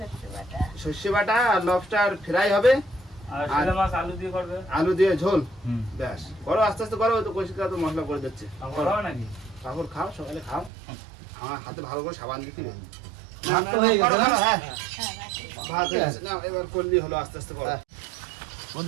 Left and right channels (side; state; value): left; drops out; at 10.7 s